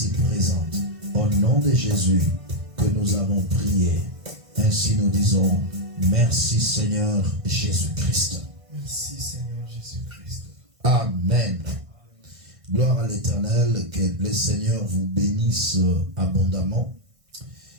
présente. Au nom de Jésus que nous avons prié. Ainsi nous disons, merci Seigneur Jésus-Christ. Merci Seigneur Jésus-Christ. Amen. Gloire à l'Éternel, que le Seigneur vous bénisse abondamment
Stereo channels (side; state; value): left; late; 1.6 ms